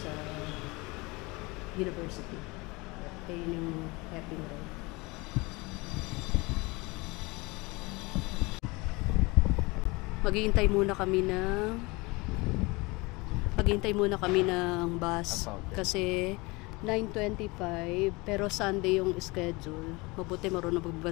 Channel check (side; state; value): right; quieter; 24.8 dB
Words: university. Kaya yung Heping Road. Maghihintay muna kami ng bus kasi 9:25 pero Sunday yung schedule. Mabuti marunong